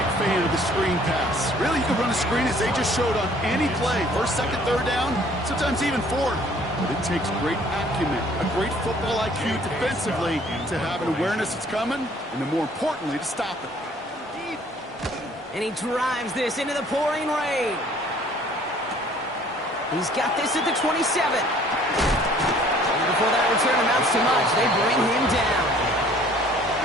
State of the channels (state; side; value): normal; both; correlation 0.56